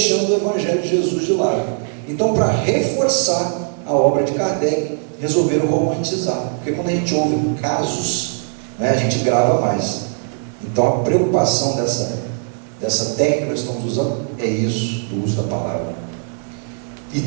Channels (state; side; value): silent; left; 66 dB below the other